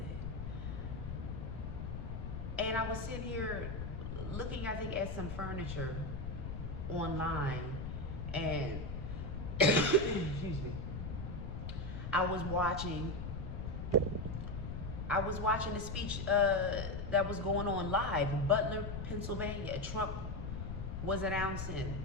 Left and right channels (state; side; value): noise; left; rumble, 5 dB below the sound